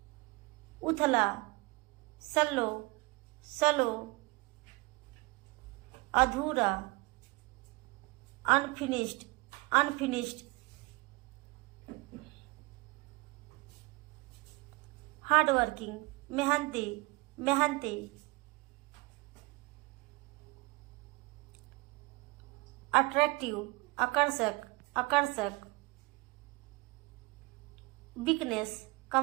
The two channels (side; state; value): left; quieter; 24.7 dB